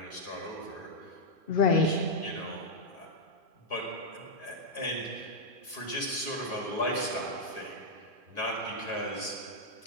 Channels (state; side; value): late; left; 2.5 ms